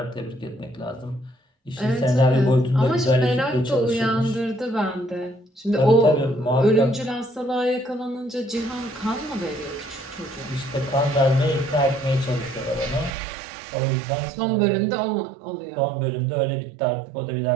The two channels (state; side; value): drops out; left; at 13.2 s